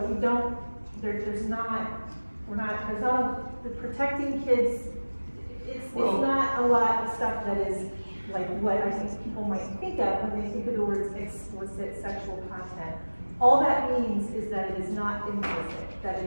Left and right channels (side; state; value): both; inverted; correlation -1.00